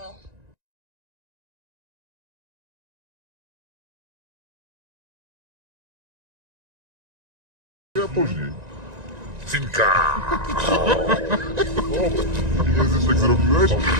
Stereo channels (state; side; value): late; left; 1.9 ms